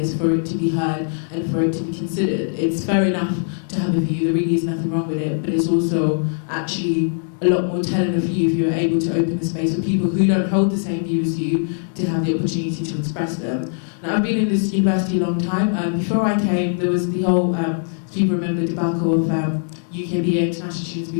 for it to be heard and for it to be considered. It's fair enough to have a view, there really is nothing wrong with it, but it's also actually a lot more telling of you if you're able to open the space for people who don't hold the same view as you to have the opportunity to express them. Now, I've been in this university a long time. Before I came, there was the whole, people remember the debacle of UKBA international students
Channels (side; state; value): right; silent; digital silence